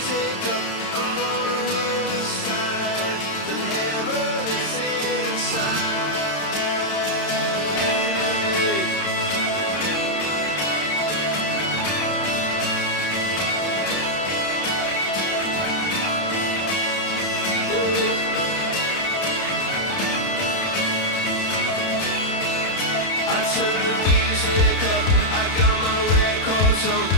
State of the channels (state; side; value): late; right; 31 ms